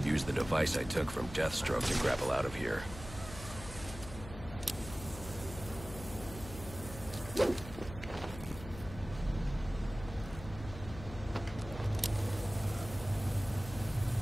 use the device I took from Deathstroke to grapple out of here.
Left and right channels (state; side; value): noise; left; hum, 12 dB below the sound